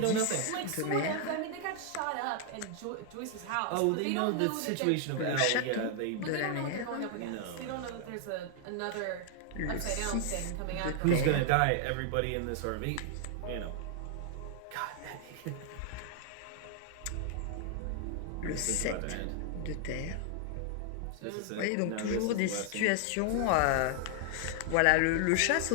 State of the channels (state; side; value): different; both; correlation 0.00